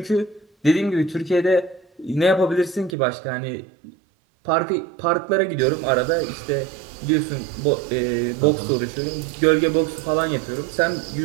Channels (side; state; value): left; drops out; at 3.0 s